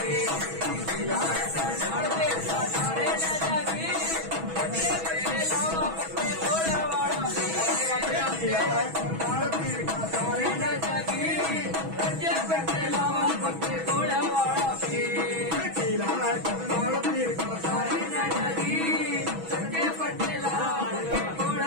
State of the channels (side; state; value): left; late; 6.2 ms